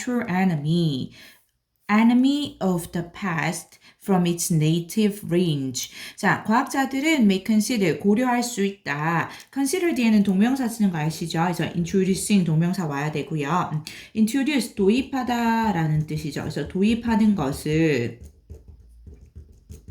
enemy of the past from its native range. 자, 과학자들은 may consider, 고려할 수 있다. consider 뒤에는 동명사 쓰는 거 아시죠? 그래서 introducing 동명사 와야 되고요. introduce, 도입하다 라는 뜻이죠. 그래서 도입하는 것을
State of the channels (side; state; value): both; identical; correlation 1.00